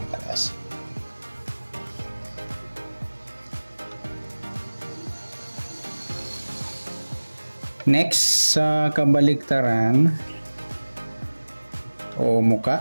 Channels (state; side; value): inverted; both; correlation -1.00